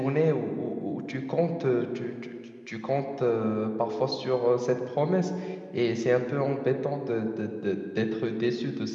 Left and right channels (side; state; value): both; identical; correlation 1.00